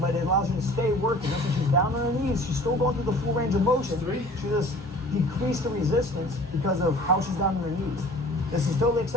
it allows you to stay working. Notice when she's down on her knees, she's still going through the full range of motion. She just decreased the resistance because of how she's down on her knees. This is totally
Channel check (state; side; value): normal; both; correlation 0.47